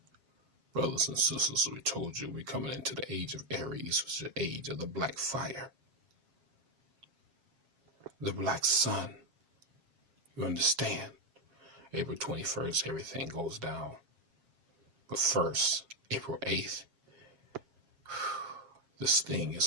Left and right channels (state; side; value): late; left; 7.4 ms